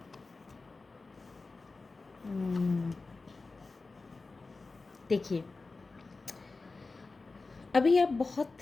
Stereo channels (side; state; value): right; quieter; 3.7 dB